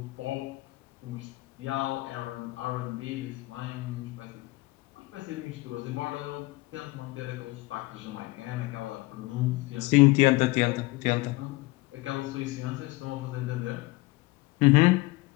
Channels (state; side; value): quieter; right; 21.6 dB